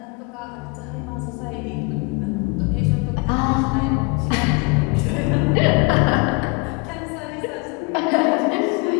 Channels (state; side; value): quieter; right; 29.1 dB